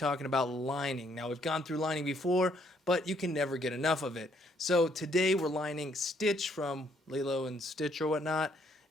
about lining. Now we've gone through lining before, but you can never get enough of it. So today we're lining Stitch from Lilo and Stitch or whatnot,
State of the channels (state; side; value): normal; both; correlation 0.69